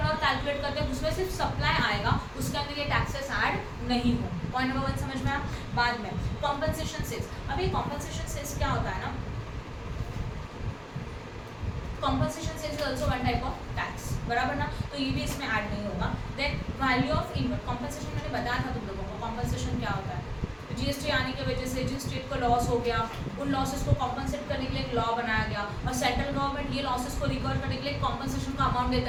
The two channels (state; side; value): identical; both; correlation 1.00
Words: कैलकुलेट करते हैं उसमें सिर्फ सप्लाई आएगा, उसके अंदर ये टैक्सेस ऐड नहीं हो। पॉइंट नंबर 1 समझ में आया। बाद में कॉम्पनसेशन सेल्स, अभी कॉम्पनसेशन सेल्स क्या होता है ना, compensation sales is also one type of tax, बराबर ना, तो ये भी इसमें ऐड नहीं होगा। Then value of invert compensation मैंने बताया था तुम लोगों को, कॉम्पनसेशन क्या होता है, जीएसटी आने की वजह से जिस स्टेट को लॉस हो गया उन लॉसेस को कॉम्पनसेट करने के लिए एक लॉ बनाया गया, और सेंट्रल गवर्नमेंट ये लॉसेस को रिकवर करने के लिए कॉम्पनसेशन का अमाउंट